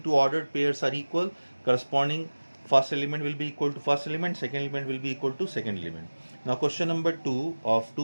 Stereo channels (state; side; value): inverted; both; correlation -1.00